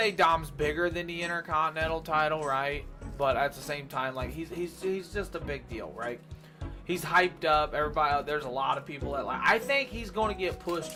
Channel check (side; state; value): both; identical; correlation 1.00